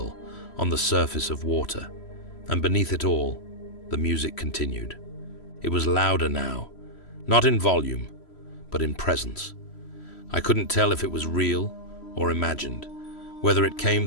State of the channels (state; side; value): late; right; 3.1 ms